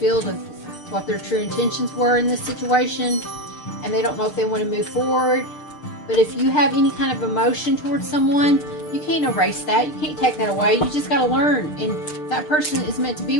of what their true intentions were in this situation, and they don't know if they want to move forward. But if you have any kind of emotion towards someone, you can't erase that. You can't take that away. You just got to learn. And if that person is meant to be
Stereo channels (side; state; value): right; late; 6.7 ms